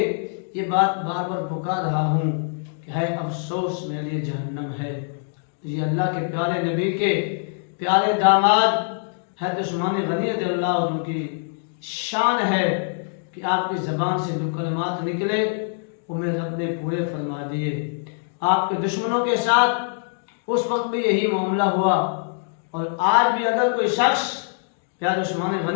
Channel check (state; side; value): silent; right; digital silence